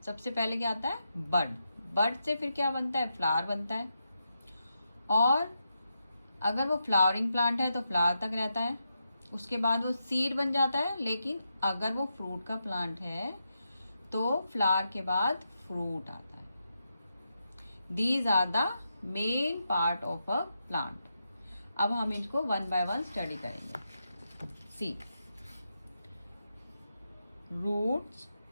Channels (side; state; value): both; inverted; correlation -0.85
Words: सबसे पहले क्या आता है? बड। बड से फिर क्या बनता है? फ्लावर बनता है। और अगर वो फ्लावरिंग प्लांट है तो फ्लावर तक रहता है, उसके बाद वो सीड बन जाता है। लेकिन अगर वो फ्रूट का प्लांट है तो फ्लावर के बाद फ्रूट आता है। These are the main part of a plant. अब हम इनको वन बाय वन स्टडी करेंगे। See, roots,